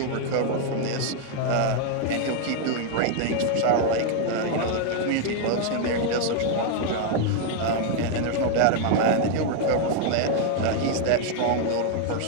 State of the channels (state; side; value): different; both; correlation 0.00